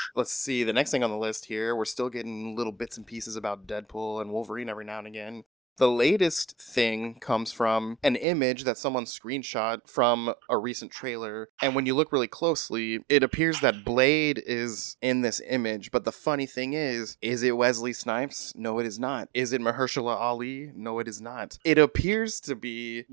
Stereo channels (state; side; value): drops out; left; at 8.2 s